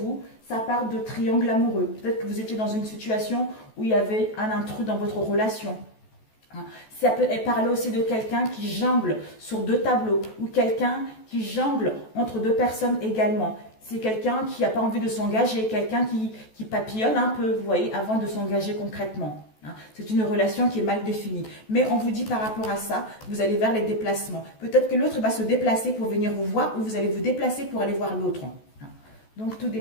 ça part de triangle amoureux. Peut-être que vous étiez dans une situation où il y avait un intrus dans votre relation. Ça peut parler aussi de quelqu'un qui jongle sur deux tableaux ou quelqu'un qui jongle entre deux personnes également. C'est quelqu'un qui n'a pas envie de s'engager, quelqu'un qui papillonne un peu, vous voyez, avant de s'engager concrètement. C'est une relation qui est mal définie. Mais on vous dit par rapport à ça, vous allez vers les déplacements. Peut-être que l'autre va se déplacer pour venir vous voir ou vous allez vous déplacer pour aller voir l'autre. Donc tout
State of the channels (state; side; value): late; right; 14 ms